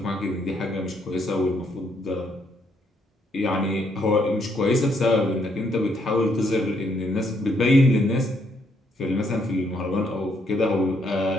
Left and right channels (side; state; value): both; normal; correlation 0.72